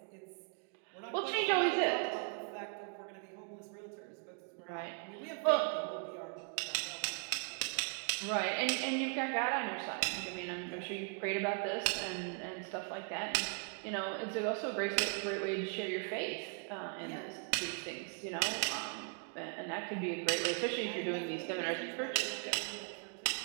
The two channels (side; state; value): left; quieter; 38.0 dB